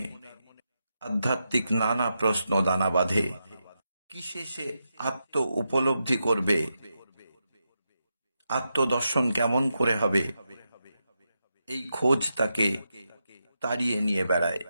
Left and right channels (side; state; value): both; inverted; correlation -0.86